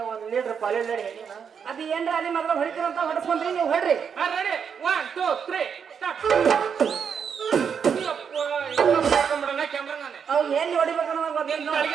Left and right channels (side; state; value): left; quieter; 7.0 dB